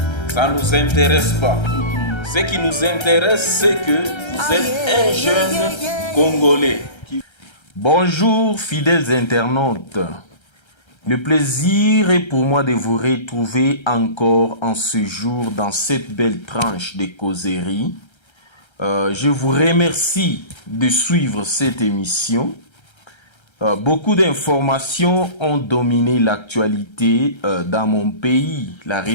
ça ne nous intéresse pas. Ce qui nous intéresse, c'est que vous êtes un jeune Congolais. Bonjour fidèles internautes. Le plaisir est pour moi de vous retrouver encore en ce jour dans cette belle tranche de causerie. Je vous remercie de suivre cette émission. Beaucoup d'informations ont dominé l'actualité dans mon pays, la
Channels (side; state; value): right; late; 1.3 ms